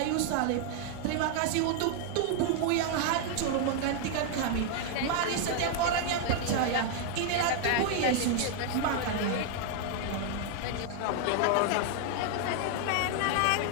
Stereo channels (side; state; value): both; different; correlation 0.00